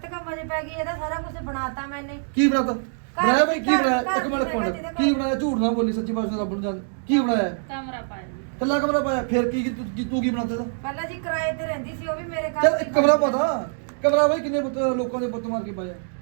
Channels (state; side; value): silent; left; digital silence